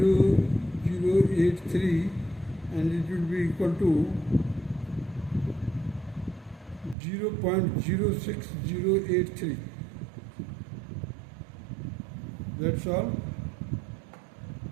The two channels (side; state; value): left; drops out; at 7.0 s